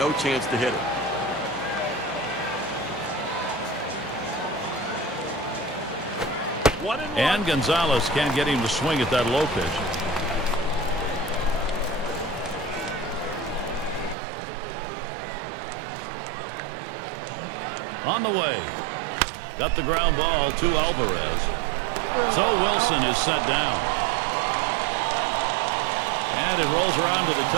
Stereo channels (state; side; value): drops out; left; at 14.2 s